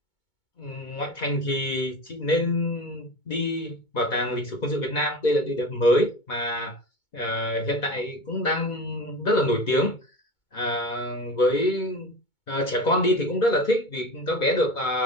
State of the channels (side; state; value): right; late; 2.2 ms